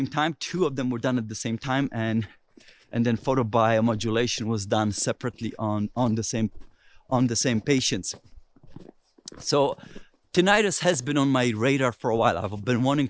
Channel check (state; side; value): identical; both; correlation 1.00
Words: time. 2 of them were done at the same time, and then photobiomodulation was done separately on the same patients. So tinnitus has been on my radar for a while. I've been wanting